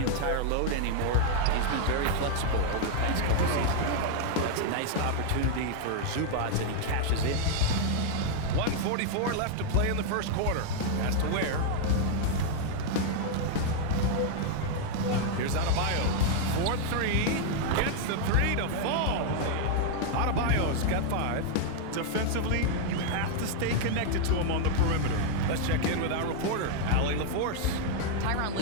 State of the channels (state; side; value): different; both; correlation 0.00